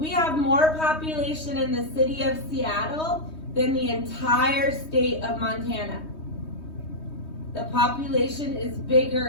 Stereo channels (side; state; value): right; late; 3.2 ms